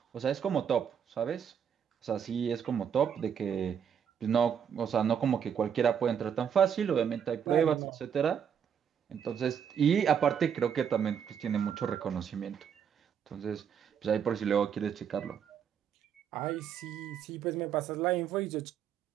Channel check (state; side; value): quieter; left; 7.9 dB